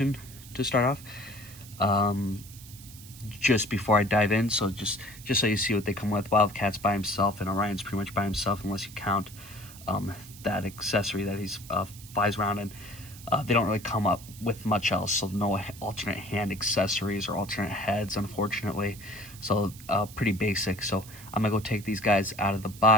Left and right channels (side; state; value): right; noise; hiss, 18 dB below the sound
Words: to start off. Just before I dive in, so just so you see what they come with, Wildcat's by himself and Orion's pretty much by himself, unless you count that accessory that he's flies around in. They don't really come up with much else, so no alternate hand accessories or alternate heads, unfortunately. So pretty basic. So I'm gonna go take these guys out of the